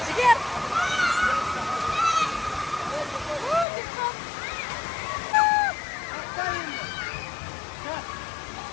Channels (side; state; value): right; drops out; at 3.7 s